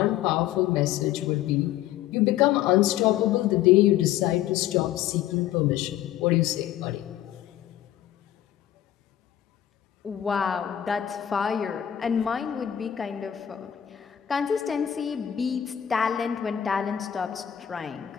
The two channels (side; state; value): right; quieter; 11.3 dB